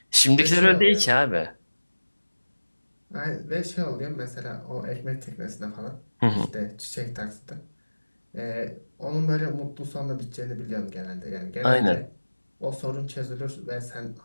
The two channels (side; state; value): both; inverted; correlation -1.00